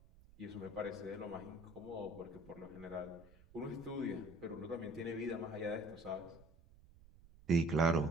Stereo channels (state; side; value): noise; right; rumble, 23 dB below the sound